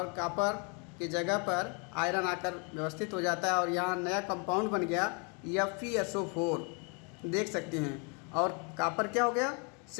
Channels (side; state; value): right; quieter; 35.0 dB